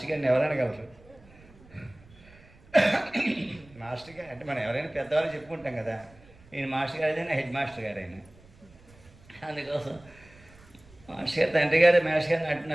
గారిని ఎవరనగలరు. మాస్టర్ గారు అంటే మనం ఎవరైనా పెద్దవాళ్ళు చెప్పుకుంటాం కదా, ఈయన మాస్టర్ గారు అయినా హెడ్ మాస్టర్ గారు అయినా. అందుకోసం మాస్టర్ గారు తండ్రి గారు మాస్టర్ గారిని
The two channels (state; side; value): noise; right; rumble, 25 dB below the sound